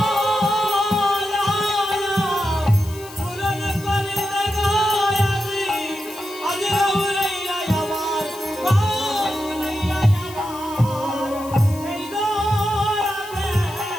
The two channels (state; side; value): noise; left; hiss, 17 dB below the sound